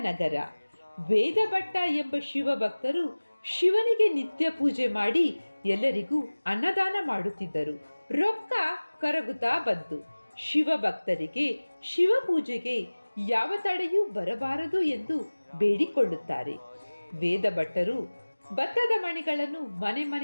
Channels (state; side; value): inverted; both; correlation -1.00